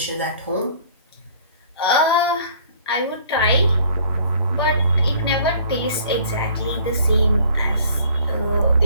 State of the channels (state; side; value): inverted; both; correlation -0.54